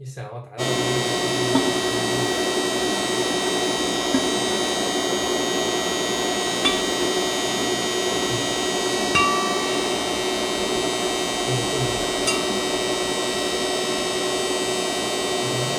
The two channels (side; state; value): both; identical; correlation 1.00